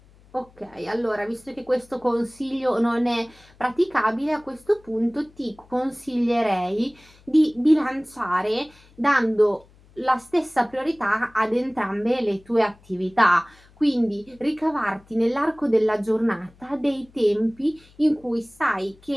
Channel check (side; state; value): left; noise; hum, 28 dB below the sound